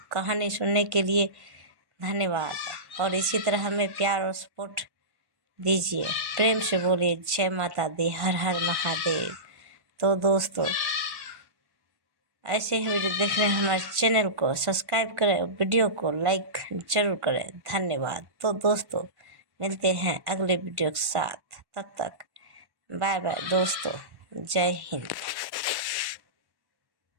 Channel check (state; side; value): late; left; 1.1 ms